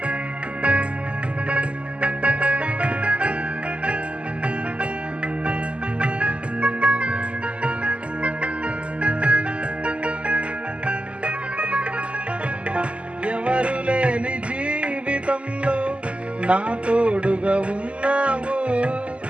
ఎవరు లేని జీవితంలో నా తోడుగా ఉన్నావు,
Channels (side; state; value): left; late; 0.057 ms